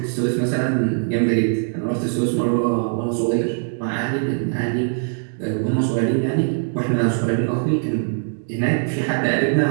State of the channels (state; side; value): silent; left; digital silence